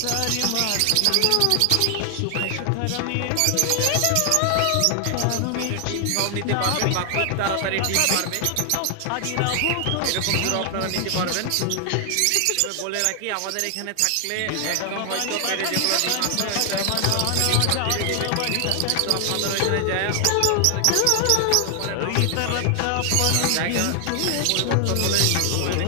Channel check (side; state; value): both; different; correlation 0.00